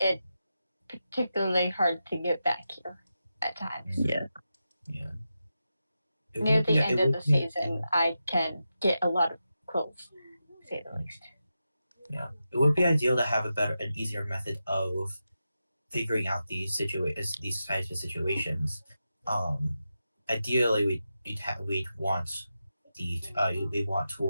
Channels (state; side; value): inverted; both; correlation -0.89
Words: particularly hard to get back here at times. Yeah. Yeah. Near the end of the season, I can get a lot of quills, to say the least. Yeah, it would be ideal to have an easier method of figuring out these types of situations. Ideally, we'd want we want